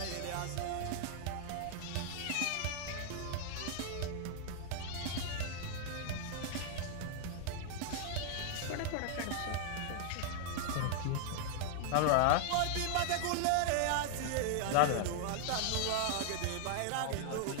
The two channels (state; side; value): different; both; correlation 0.00